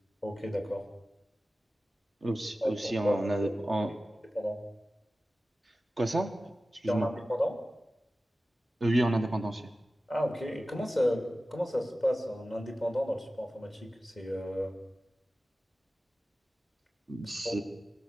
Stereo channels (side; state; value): both; normal; correlation 0.95